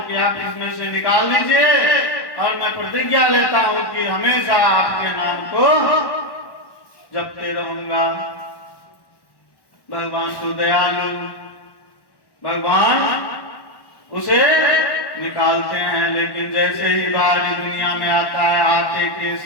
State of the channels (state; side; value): late; right; 1.1 ms